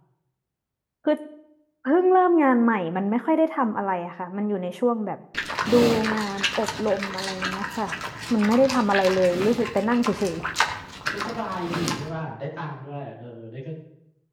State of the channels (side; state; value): both; identical; correlation 1.00